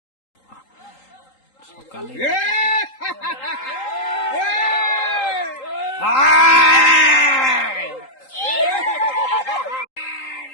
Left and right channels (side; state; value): right; late; 3.8 ms